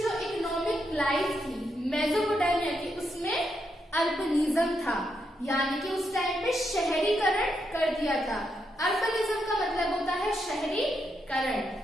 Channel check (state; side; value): normal; both; correlation 0.81